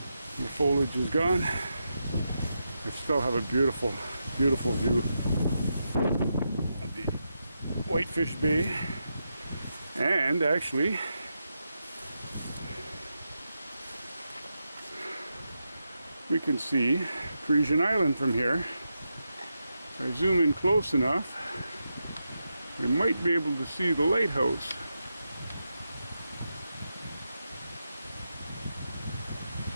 foliage is gone. I still have a beautiful, beautiful view of the Whitefish Bay, and actually we can see Parisian Island from here. If I zoom in close enough, we might be able to see the lighthouse.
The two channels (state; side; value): inverted; both; correlation -0.87